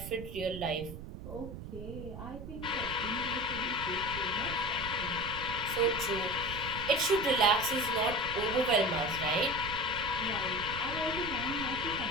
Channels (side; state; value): right; noise; rumble, 10 dB below the sound